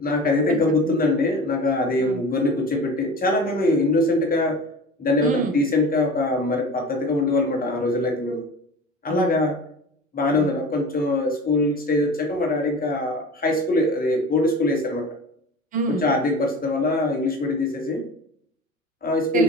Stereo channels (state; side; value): normal; both; correlation 0.36